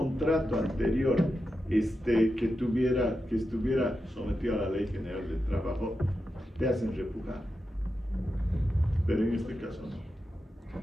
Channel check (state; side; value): normal; both; correlation 0.89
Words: anterior que estuviera sometido a la Ley General del Trabajo, te hacen repujar. Pero en este caso no.